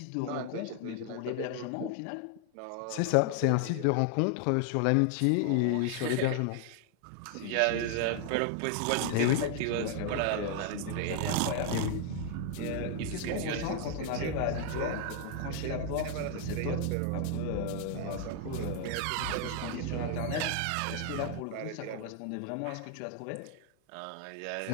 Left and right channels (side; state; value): both; different; correlation 0.00